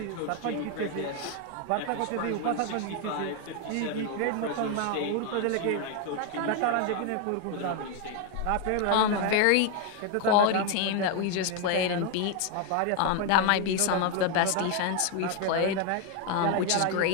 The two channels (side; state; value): both; different; correlation 0.01